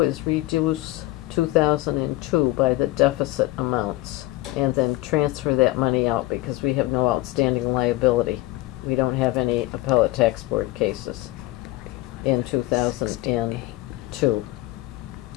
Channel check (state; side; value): quieter; right; 18.2 dB